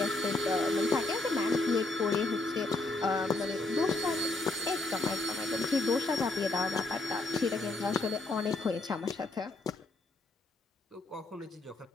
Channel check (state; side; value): quieter; right; 3.1 dB